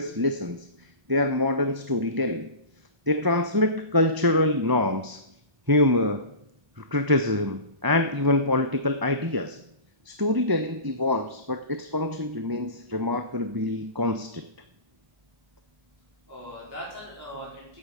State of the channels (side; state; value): left; late; 1.0 ms